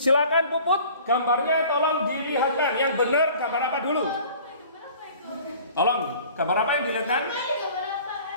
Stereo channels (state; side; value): inverted; both; correlation -0.48